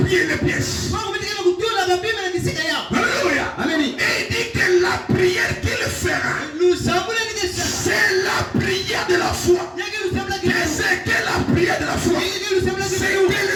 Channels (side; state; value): both; identical; correlation 1.00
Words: prière, les pièces. Alléluia. Et il dit que la prière qu'il fera, c'est la prière de la foi. Et c'est que la prière de la foi, c'est